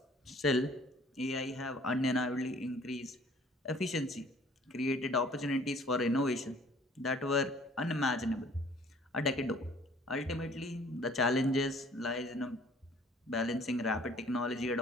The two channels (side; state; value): both; normal; correlation 0.55